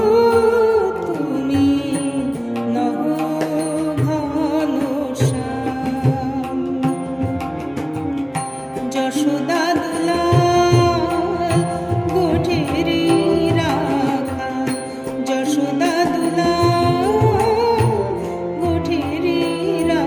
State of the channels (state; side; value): identical; both; correlation 1.00